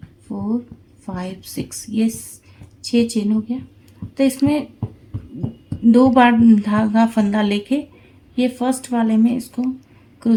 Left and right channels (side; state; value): both; identical; correlation 1.00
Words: 4 5 6, ये 6 चेन हो गया। तो इसमें 2 बार धागा फंदा लेके ये फर्स्ट वाले में इसको